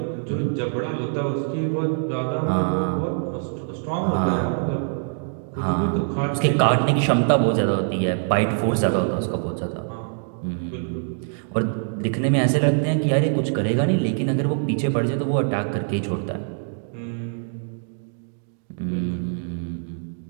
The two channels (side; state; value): left; silent; digital silence